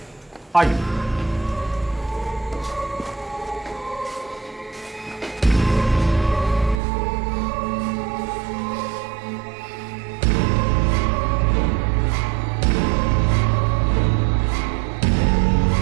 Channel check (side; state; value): left; drops out; at 6.8 s